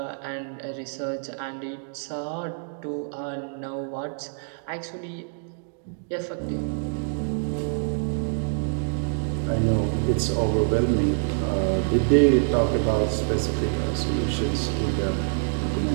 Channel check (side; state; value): left; silent; digital silence